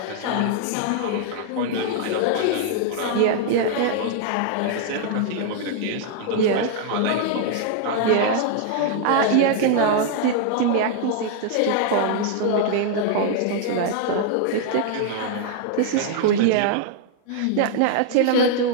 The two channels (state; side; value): different; both; correlation 0.00